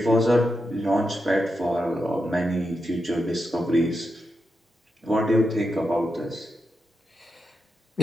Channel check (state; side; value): normal; both; correlation 0.87